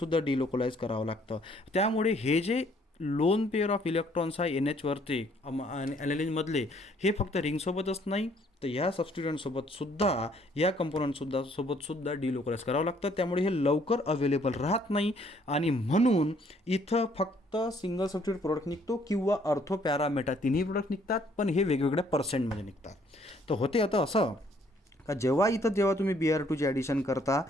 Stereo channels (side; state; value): both; normal; correlation 0.64